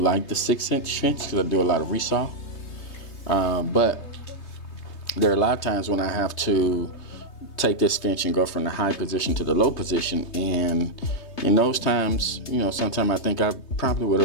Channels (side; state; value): right; late; 3.2 ms